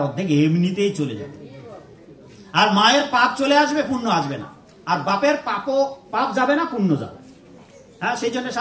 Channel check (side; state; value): both; identical; correlation 1.00